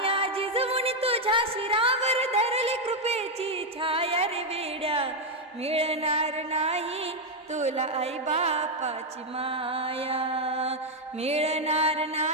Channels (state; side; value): normal; both; correlation 0.02